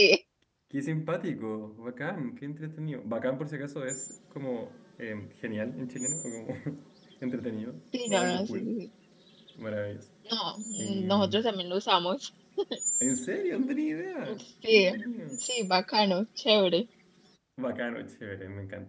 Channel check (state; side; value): identical; both; correlation 1.00